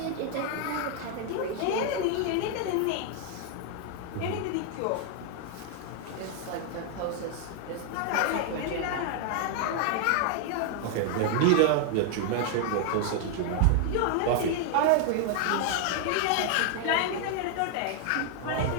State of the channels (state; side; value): different; both; correlation 0.00